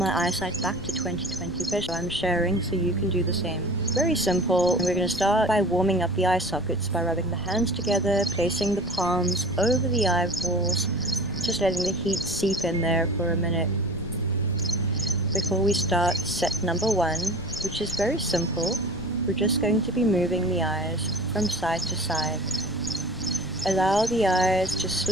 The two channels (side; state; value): left; noise; rumble, 16 dB below the sound